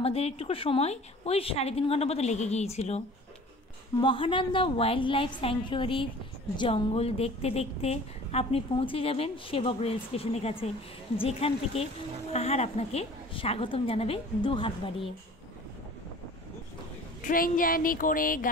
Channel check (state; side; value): normal; both; correlation 0.45